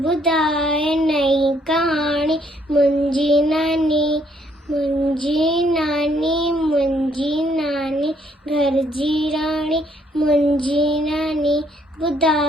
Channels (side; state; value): both; normal; correlation 0.68